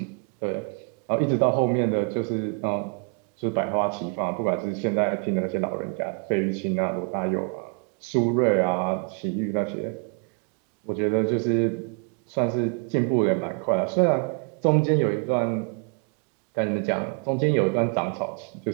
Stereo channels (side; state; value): left; quieter; 38.1 dB